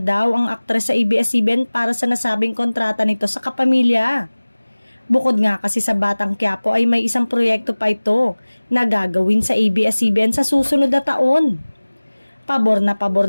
ang aktres sa ABS-CBN para sa nasabing kontrata nito sa kapamilya. Bukod nga kasi sa Batang Quiapo ay may isang proyekto pa ito na gagawin sa ABS-CBN sa susunod na taon. Pabor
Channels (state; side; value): inverted; both; correlation -1.00